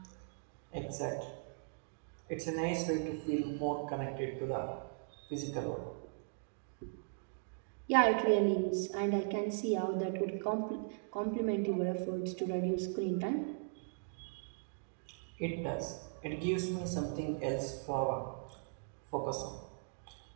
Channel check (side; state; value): left; silent; digital silence